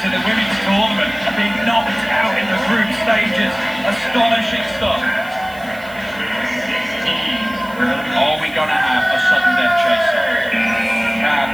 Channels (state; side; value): noise; right; hiss, 23 dB below the sound